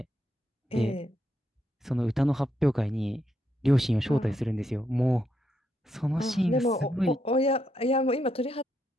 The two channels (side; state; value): both; normal; correlation 0.79